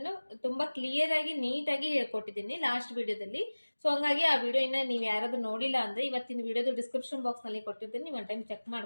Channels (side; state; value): both; inverted; correlation -1.00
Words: ತುಂಬಾ ಕ್ಲಿಯರ್ ಆಗಿ ನೀಟ್ ಆಗಿ ಹೇಳ್ಕೊಟ್ಟಿದ್ದೀನಿ ಲಾಸ್ಟ್ ವಿಡಿಯೋದಲ್ಲಿ. ಸೊ ಹಂಗಾಗಿ ಆ ವಿಡಿಯೋ ಇನ್ನ ನೀವು ಯಾರಾದ್ರೂ ನೋಡಿಲ್ಲ ಅಂದ್ರೆ ಇವತ್ತಿನ ವಿಡಿಯೋದ ಡಿಸ್ಕ್ರಿಪ್ಷನ್ ಬಾಕ್ಸ್ ನಲ್ಲಿ ಕೊಟ್ಟಿರ್ತೀನಿ, ನೀವು ಒಂದು ಟೈಮ್ ಚೆಕ್